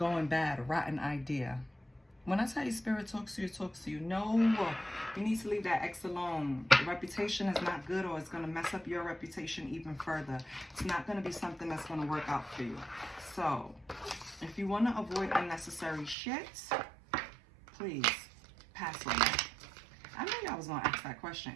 bad, rotten idea. When I tell you spirit talks to you, it talks to you. No, you need to leave that ex alone. The reputation is not good, or it's going to mess up your reputation even further. It's not going to be something that's going to work out for you. So, if you want to avoid unnecessary shit, please pass on that. I knew y'all was going to ask that question,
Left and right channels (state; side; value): drops out; left; at 16.2 s